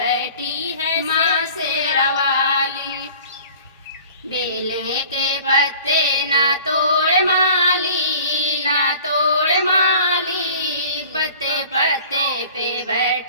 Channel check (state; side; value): inverted; both; correlation -0.46